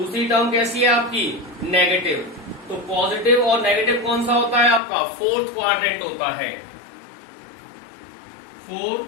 टर्म कैसी है आपकी नेगेटिव। तो पॉजिटिव और नेगेटिव कौन सा होता है आपका फोर्थ क्वाड्रेंट होता है। 4,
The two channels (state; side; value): drops out; right; at 4.8 s